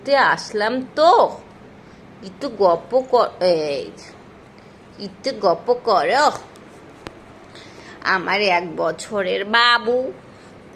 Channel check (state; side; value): identical; both; correlation 1.00